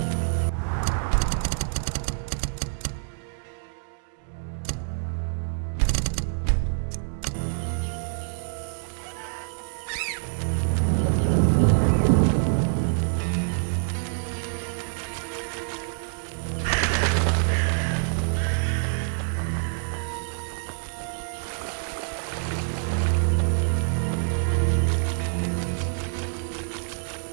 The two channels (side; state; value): left; silent; digital silence